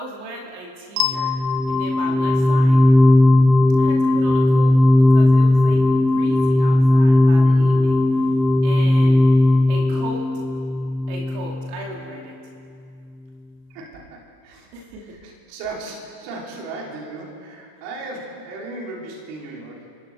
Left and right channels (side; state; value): left; late; 39 ms